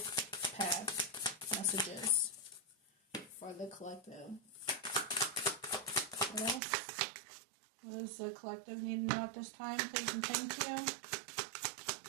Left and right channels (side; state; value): left; drops out; at 6.6 s